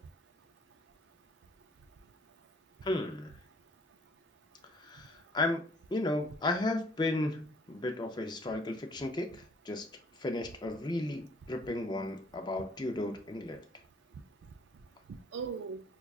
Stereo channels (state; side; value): normal; both; correlation 0.60